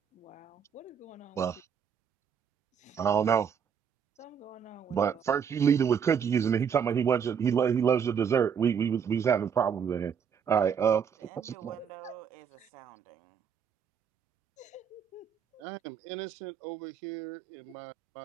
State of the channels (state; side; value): quieter; left; 7.4 dB